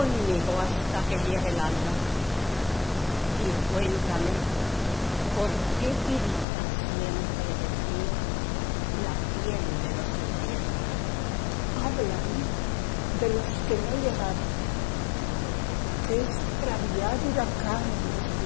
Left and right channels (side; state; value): right; drops out; at 6.5 s